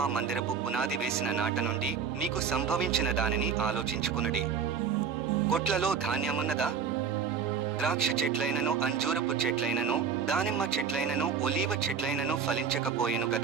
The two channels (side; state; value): left; quieter; 6.5 dB